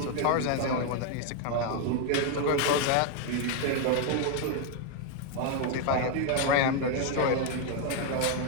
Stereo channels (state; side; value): different; both; correlation 0.00